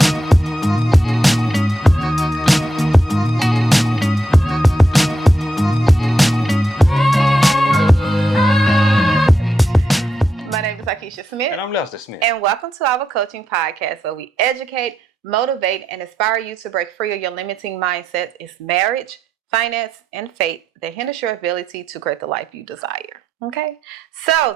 Keisha Smith. And I'm Lester Smith. And welcome to our coaching podcast where we educate, motivate, and inspire you to break free of your limiting mindsets. It's marriage, finance, and faith that hinders your ability to create the life you desire. Okay? So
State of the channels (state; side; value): normal; both; correlation 0.82